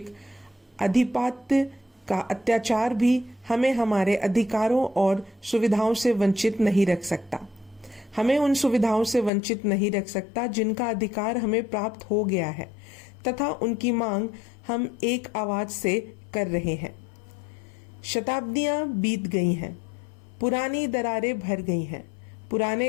अधिपत्य का अत्याचार भी हमें हमारे अधिकारों और सुविधाओं से वंचित नहीं रख सकता। हमें उन सुविधाओं से वंचित नहीं रख सकता जिनका अधिकार हमें प्राप्त हो गया है तथा उनकी मांग हम एक आवाज से कर रहे हैं। शताब्दियां बीत गई हैं, पुरानी दरारें भर गई हैं,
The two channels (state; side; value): drops out; right; at 9.3 s